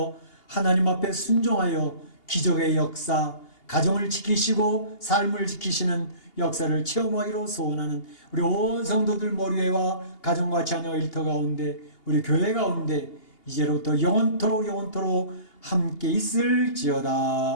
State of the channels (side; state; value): right; late; 2.8 ms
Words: 하나님 앞에 순종하여 기적의 역사, 가정을 지키시고 삶을 지키시는 역사를 체험하기로 소원하는 우리 온 성도들 머리에와 가정과 자녀 일터 가운데 우리 교회 가운데 이제로부터 영원토록 함께